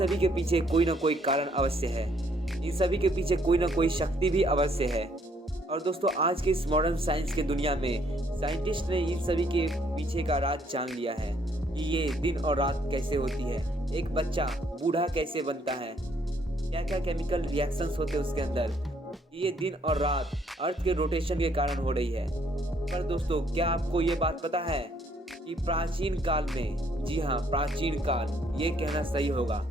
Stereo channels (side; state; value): both; normal; correlation 0.67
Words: के पीछे कोई ना कोई कारण अवश्य है, इन सभी के पीछे कोई ना कोई शक्ति भी अवश्य है। और दोस्तों, आज के इस मॉडर्न साइंस के दुनिया में साइंटिस्ट ने इन सभी के पीछे का राज जान लिया है कि ये दिन और रात कैसे होती है, एक बच्चा बूढ़ा कैसे बनता है, क्या क्या केमिकल रिएक्शंस होते हैं उसके अंदर, ये दिन और रात अर्थ के रोटेशन के कारण हो रही है। पर दोस्तों, क्या आपको ये बात पता है कि प्राचीन काल में, जी हाँ प्राचीन काल, ये कहना सही होगा